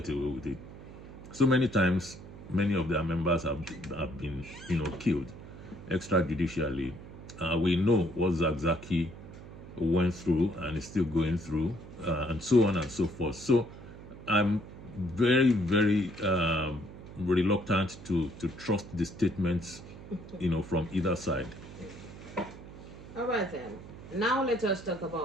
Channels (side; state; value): right; noise; hum, 15 dB below the sound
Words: away with it. So many times, many of their members have been, killed extrajudicially. We know what Zakzaki went through and is still going through, and so on and so forth. So I'm very, very reluctant to trust the statements, from either side. All right then. Now let us talk